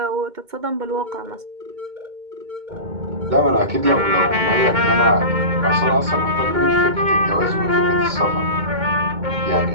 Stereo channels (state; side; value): late; left; 2.2 ms